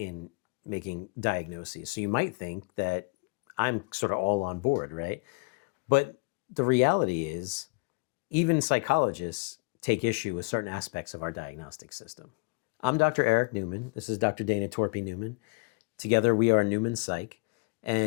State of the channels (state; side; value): quieter; right; 30.4 dB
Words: making diagnoses. So you might think that I'm sort of all on board, right? But the reality is, even psychologists take issue with certain aspects of our diagnostic system. I'm Dr. Eric Newman. This is Dr. Dana Torpy Newman. Together we are Newman Psych.